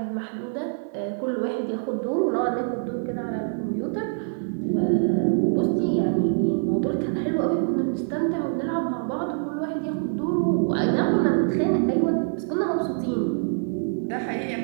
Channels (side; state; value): left; silent; digital silence